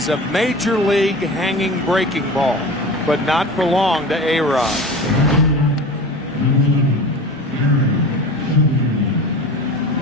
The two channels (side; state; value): both; normal; correlation 0.34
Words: a major league hanging breaking ball, but not for long to A-Rod.